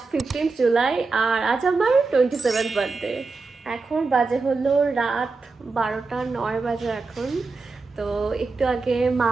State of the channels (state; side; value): quieter; left; 4.1 dB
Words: 15 জুলাই আর আজ আমার 27th বার্থডে। এখন বাজে হলো রাত 12:09 বাজে এখন। তো একটু আগে